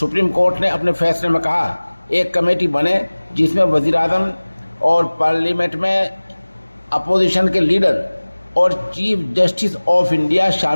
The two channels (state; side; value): inverted; both; correlation -1.00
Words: कोर्ट ने अपने फैसले में कहा एक कमेटी बने जिसमें वज़ीर-ए-आज़म और पार्लियामेंट में अपोजिशन के लीडर और चीफ जस्टिस ऑफ इंडिया